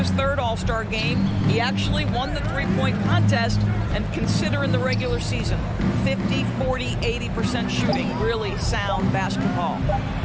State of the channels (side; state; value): both; identical; correlation 1.00